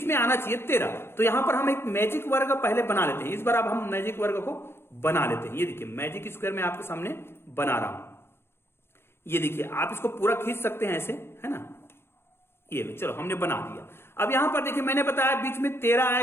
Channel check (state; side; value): late; right; 0.12 ms